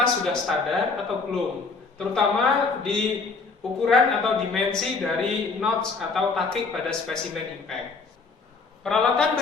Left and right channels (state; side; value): quieter; right; 4.4 dB